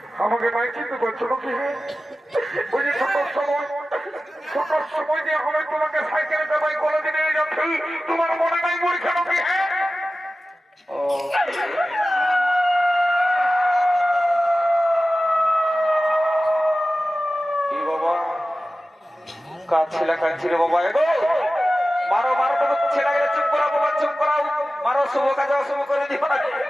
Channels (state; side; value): normal; both; correlation 0.95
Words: আমাকে নাই চিনতে পারছো নাকি? ওই যে ছোট সময় দিয়ে হবে তোমাকে সাইকেলে চাপাই কলেজে নিয়ে যাচ্ছি, তোমার মনে নাই পরীক্ষা নাকি? হ্যাঁ কি বাবা কাঁদছিলা কাঁদছিলে বাবা? এগো মারো মারো তো ছেলে গেলে চুপ করা বাবা, চুপ করাও, মারো শুভ কাজে অশুভ করে দিও না।